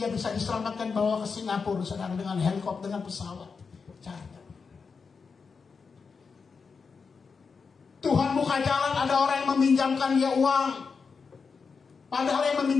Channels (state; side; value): quieter; right; 5.2 dB